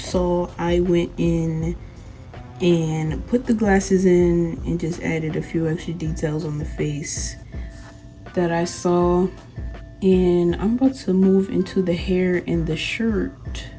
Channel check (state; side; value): identical; both; correlation 1.00